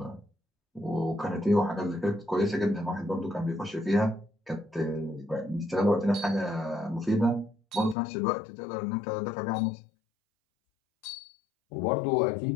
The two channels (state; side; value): drops out; right; at 8.0 s